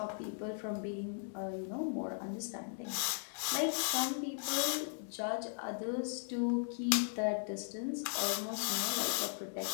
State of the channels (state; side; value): silent; right; digital silence